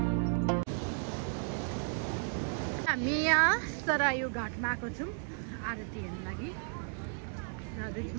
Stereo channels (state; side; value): silent; left; 55 dB below the other